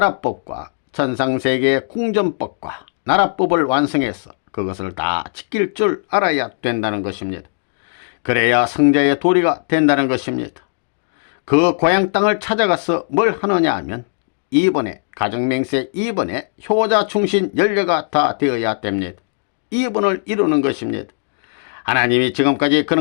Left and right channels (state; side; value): silent; right; digital silence